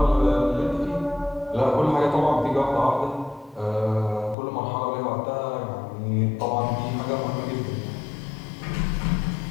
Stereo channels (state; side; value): drops out; right; at 4.4 s